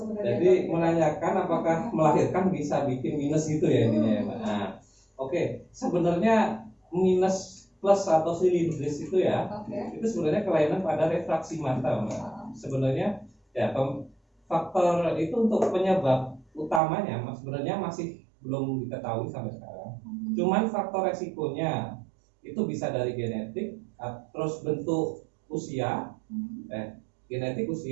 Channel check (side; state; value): left; drops out; at 16.8 s